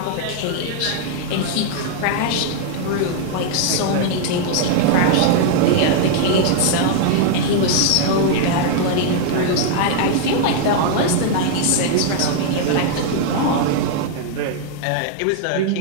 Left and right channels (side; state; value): both; different; correlation 0.00